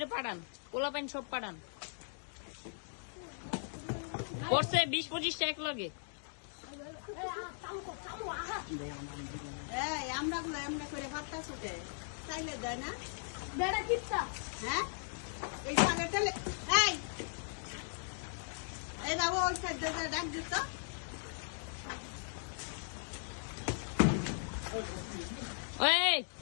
পাঠান, পোলাপেন সব পাঠান। পড়ছে 20-25 টাকা লাগে। আমরা গুলো এমনি করে ভাতটা ছুটে চাইলে দেয় না। হ্যাঁ এই পাগেটালে এই বাবু ওই সাইড ডাক দিত। এই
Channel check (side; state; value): right; silent; digital silence